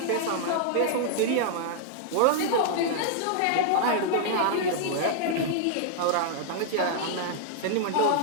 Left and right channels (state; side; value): different; both; correlation -0.01